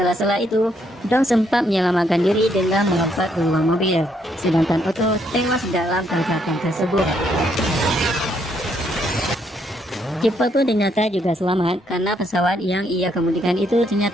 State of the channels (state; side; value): normal; both; correlation 0.73